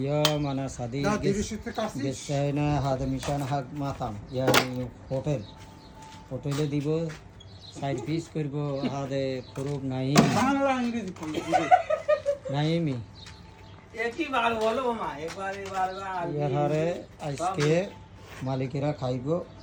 أنا صديق جسينا هذا مشان حق مطعم يعني হোটেলে দিব side piece করব হাদে খুরুব নাইম বাংলা ইংরেজি নাইমি একই বার বলো মা একবার ইয়ারে আজকে মালিকেরা খাইবো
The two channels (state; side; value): identical; both; correlation 1.00